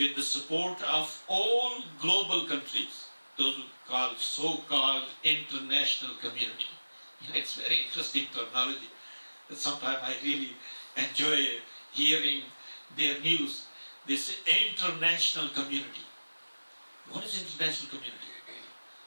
the support of all global countries, those who call so-called international community. It's very interesting terminology. Sometimes I really enjoy hearing their news. This international community. What is international community?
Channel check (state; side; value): inverted; both; correlation -1.00